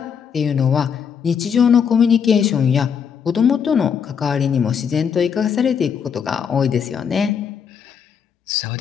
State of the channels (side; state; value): right; quieter; 7.2 dB